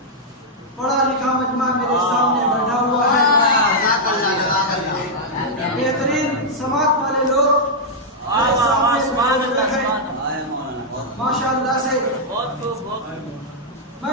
पढ़ा लिखा मजमा मेरे सामने बैठा हुआ है। बेहतरीन समाज वाले लोग माशाअल्लाह से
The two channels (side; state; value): both; normal; correlation -0.05